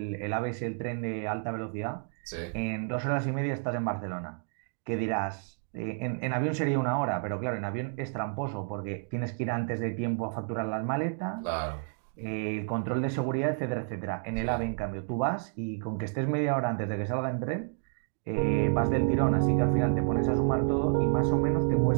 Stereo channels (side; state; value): left; silent; 58 dB below the other